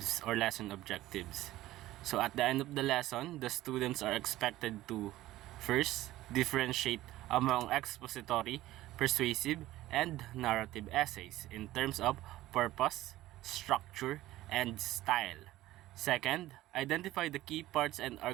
or lesson objectives. So at the end of the lesson, the students are expected to first differentiate among expository, persuasive, and narrative essays in terms of purpose, structure, and style. Second, identify the key parts and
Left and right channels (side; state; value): left; quieter; 15.9 dB